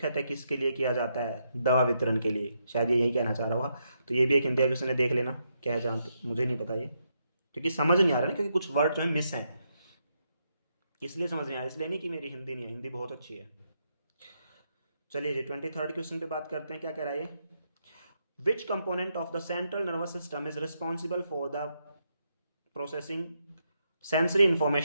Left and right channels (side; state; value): both; inverted; correlation -0.80